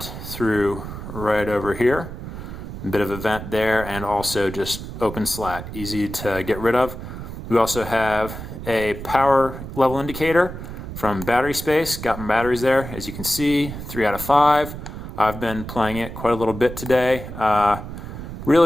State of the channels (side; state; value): right; noise; rumble, 9 dB below the sound